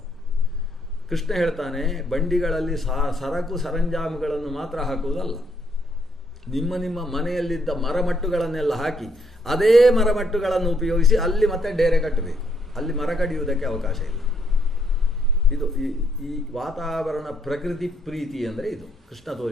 ಕೃಷ್ಣ ಹೇಳ್ತಾನೆ, ಬಂಡಿಗಳಲ್ಲಿ ಸರಕು ಸರಂಜಾಮುಗಳನ್ನು ಮಾತ್ರ ಹಾಕುವುದಲ್ಲ, ನಿಮ್ಮ ಮನೆಯಲ್ಲಿದ್ದ ಮರಮಟ್ಟುಗಳನ್ನೆಲ್ಲ ಹಾಕಿ ಅದೇ ಮರಮಟ್ಟುಗಳನ್ನು ಉಪಯೋಗಿಸಿ ಅಲ್ಲಿ ಮತ್ತೆ ಡೇರೆ ಕಟ್ಟಬೇಕು. ಅಲ್ಲಿ ಮರ ಕಡಿಯುವುದಕ್ಕೆ ಅವಕಾಶ ಇಲ್ಲ. ಇದು ಈ ವಾತಾವರಣ ಪ್ರಕೃತಿ ಪ್ರೀತಿ ಅಂದರೆ ಇದು ಕೃಷ್ಣ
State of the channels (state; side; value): normal; both; correlation 0.71